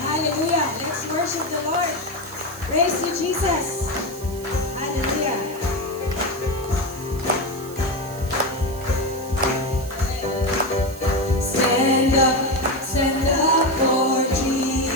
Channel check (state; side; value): noise; right; hiss, 17 dB below the sound